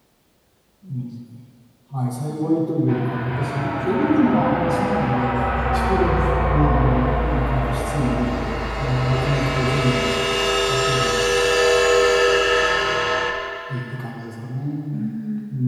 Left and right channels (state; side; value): identical; both; correlation 1.00